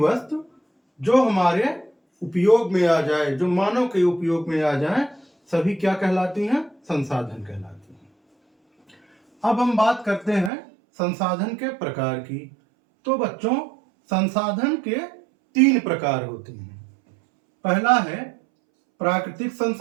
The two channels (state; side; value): drops out; left; at 10.5 s